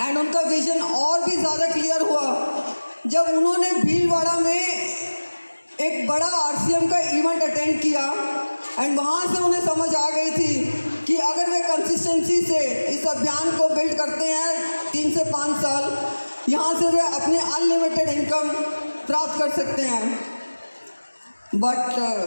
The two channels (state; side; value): inverted; both; correlation -1.00